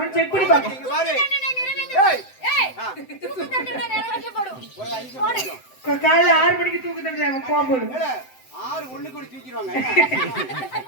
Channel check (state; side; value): late; right; 7.8 ms